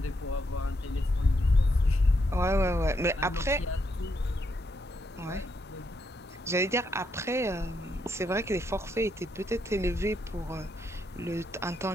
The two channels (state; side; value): normal; both; correlation 0.79